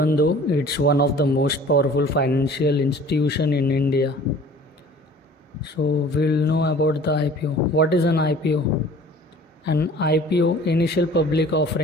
though it's one of the most powerful financial institution in India. So we'll know about the IPO. What is an IPO? An IPO, initial public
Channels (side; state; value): both; normal; correlation 0.48